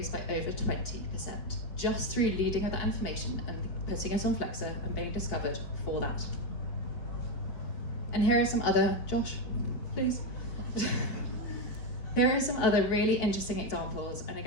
by over 20%, just through leading with that information and putting it on Flexa and being discovered for that. And here are some other, Josh, please. Here are some other really interesting examples, and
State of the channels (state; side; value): late; right; 4.7 ms